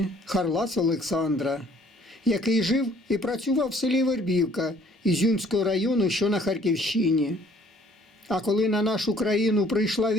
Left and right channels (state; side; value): normal; both; correlation 0.59